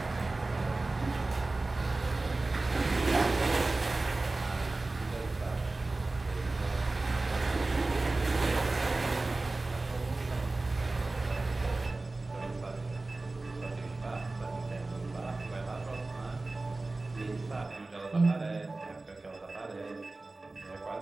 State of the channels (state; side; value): quieter; left; 3.2 dB